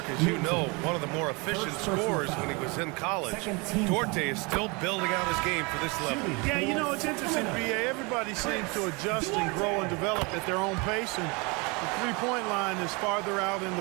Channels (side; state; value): left; quieter; 28.8 dB